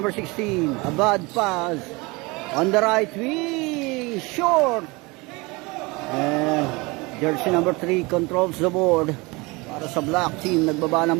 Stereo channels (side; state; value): left; quieter; 25.1 dB